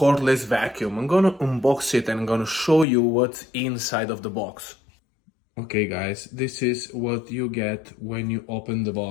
vacuum. I'm gonna unbox it and I'm gonna show you what's inside of the box. Okay guys, this is what you get when you open the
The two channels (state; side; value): drops out; right; at 2.9 s